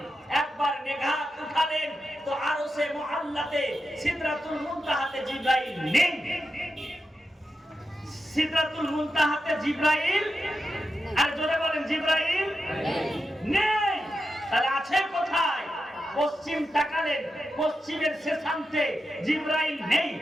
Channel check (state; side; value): normal; both; correlation 0.89